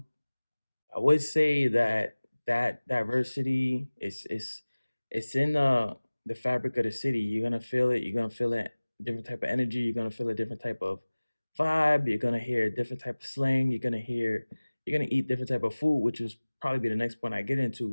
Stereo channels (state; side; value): inverted; both; correlation -1.00